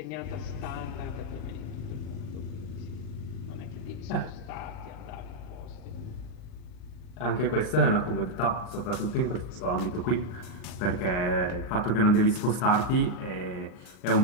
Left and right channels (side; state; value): right; late; 39 ms